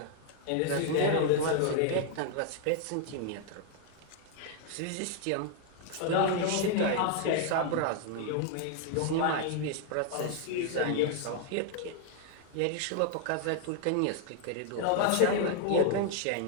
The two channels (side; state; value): both; different; correlation 0.00